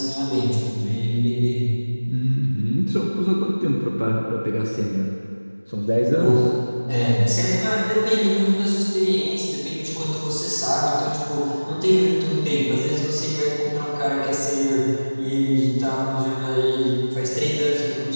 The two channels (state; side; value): inverted; both; correlation -1.00